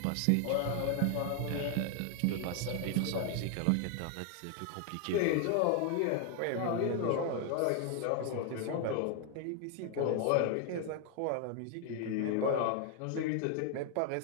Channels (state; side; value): different; both; correlation 0.00